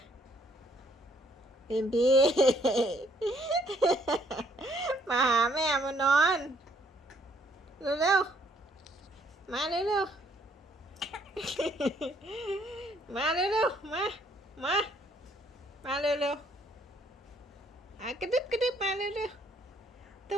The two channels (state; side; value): normal; both; correlation 0.66